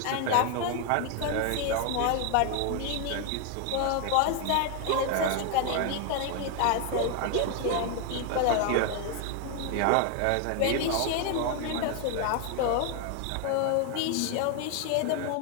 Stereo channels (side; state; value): both; different; correlation 0.01